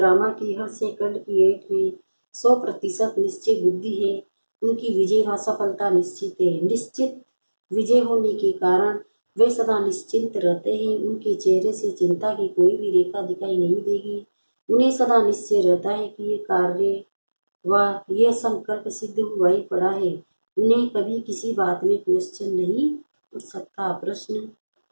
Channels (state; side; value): inverted; both; correlation -1.00